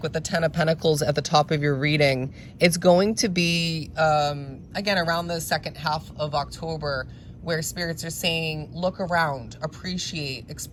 with the Ten of Pentacles at the top of your reading, it's going to be, again, around the second half of October, where spirits are saying, look around, appreciate,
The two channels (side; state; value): both; identical; correlation 1.00